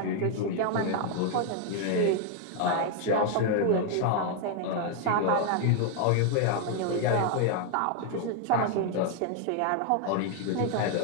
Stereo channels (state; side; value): different; both; correlation 0.00